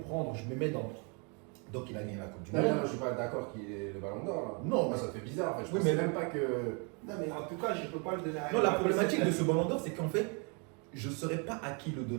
Je me mets dans. Donc, il a gagné la Coupe du Non, Monde. non, je suis pas d'accord qu'il ait le ballon d'or. Non, moi mais- ça fait bizarre. En fait. Je Oui, pensais mais- même pas que. Non, mais en tout cas, je ne peux pas le donner à Non, la Mbappé, problématique c'est de ce ballon d'or, c'est qu'en fait, je ne saurais pas à qui le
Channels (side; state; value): left; quieter; 35.1 dB